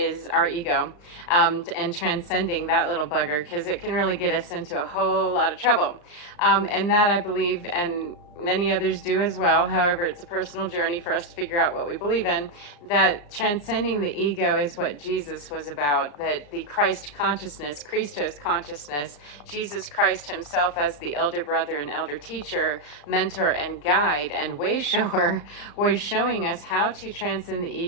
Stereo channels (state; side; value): late; right; 34 ms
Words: our ego, and transcending that little bugger, because it can really get us into a whole lot of trouble. And that I believe, and many others do as well. However, it's a personal journey for us to figure out what we believe in. That transcending the ego is what Jesus was about. That the Christ consciousness, Christos consciousness, Jesus Christ himself as the elder brother and elder teacher, mentor and guide and way shower, was showing us how to transcend the